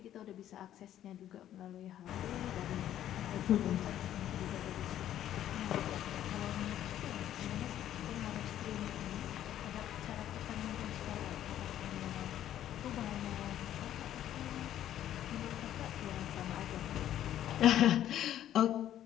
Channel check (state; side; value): quieter; right; 11.6 dB